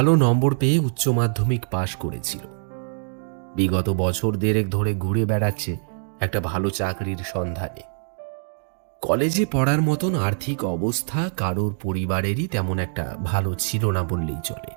নম্বর পেয়ে উচ্চ মাধ্যমিক পাশ করেছিল। বিগত বছর দেড়েক ধরে ঘুরে বেড়াচ্ছে একটা ভালো চাকরির সন্ধানে। কলেজে পড়ার মতন আর্থিক অবস্থা কারোর পরিবারেরই তেমন একটা ভালো ছিল না বললেই চলে।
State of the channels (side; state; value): left; silent; 62 dB below the other